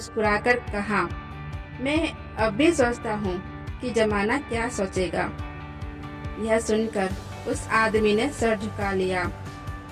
कहा, मैं अब भी सोचता हूँ कि जमाना क्या सोचेगा। यह सुनकर उस आदमी ने सर झुका लिया,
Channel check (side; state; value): both; identical; correlation 1.00